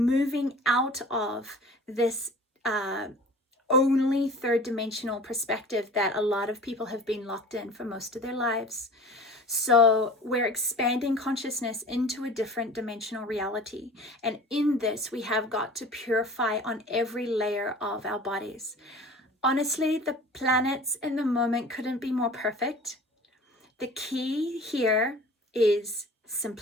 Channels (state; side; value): normal; both; correlation 0.42